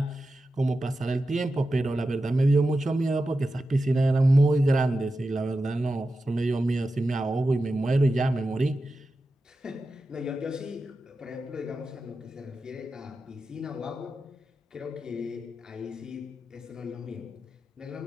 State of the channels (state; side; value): normal; both; correlation 0.91